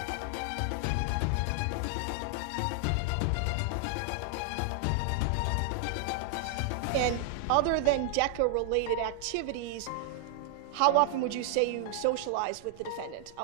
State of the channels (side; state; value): both; different; correlation 0.00